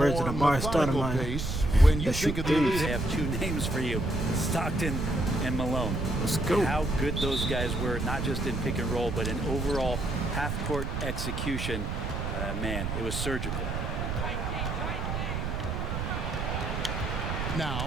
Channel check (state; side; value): noise; right; rumble, 2 dB below the sound